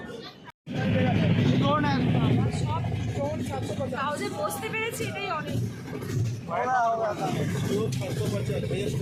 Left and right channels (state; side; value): identical; both; correlation 1.00